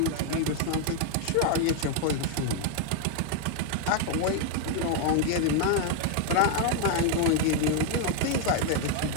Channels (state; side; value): different; both; correlation 0.00